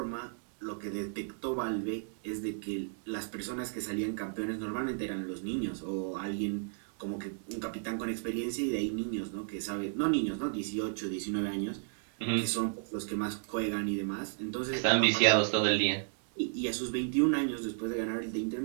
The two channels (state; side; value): silent; left; digital silence